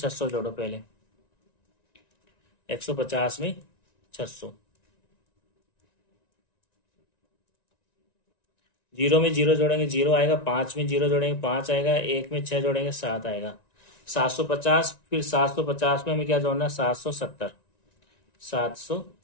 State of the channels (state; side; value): late; right; 1.9 ms